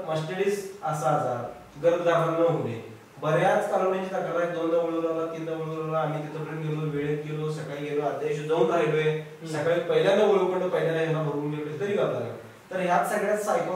मस्टॅडिस असा आजार गर्भधारण न होणे, बऱ्याच कालवडींची तक्रार आहे. 2दा वळवला, 3दा वळवला, आम्ही तिथपर्यंत गेलो, वेळेत गेलो, सकाळी गेलो, अध्यायश जाऊन राहिलोय, सकाळी पहिल्यांदा वळवून पहिल्यांदा ह्याला भरून गेलो तरी गाव लागला. तर ह्यात सगळ्यात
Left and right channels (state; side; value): identical; both; correlation 1.00